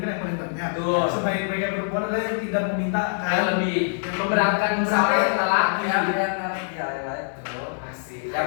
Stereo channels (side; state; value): right; silent; digital silence